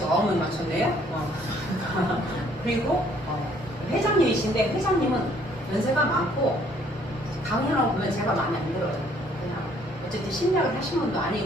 9명 맞췄네요. 그리고 회장님이신데 회장님은 연세가 많고 강연하고 보면 제가 마음에 안 들어요. 그냥 어쨌든 심리학을 하신 분도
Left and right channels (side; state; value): both; normal; correlation 0.63